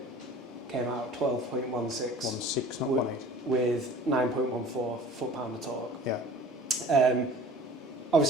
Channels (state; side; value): normal; both; correlation 0.44